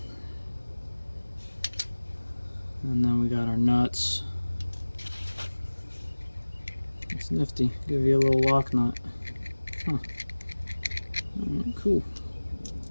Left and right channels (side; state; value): both; inverted; correlation -1.00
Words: And then we got our nuts. It's nifty. Give you a little lock nut. Huh. Cool.